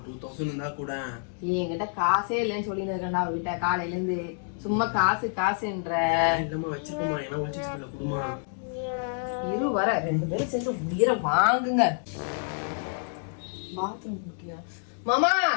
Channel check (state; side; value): silent; right; 59 dB below the other